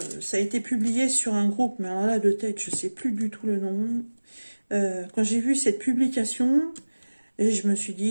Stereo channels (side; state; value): both; inverted; correlation -1.00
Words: ça a été publié sur un groupe, mais alors là, de tête, je ne sais plus du tout le nom. Quand j'ai vu cette publication, et je me suis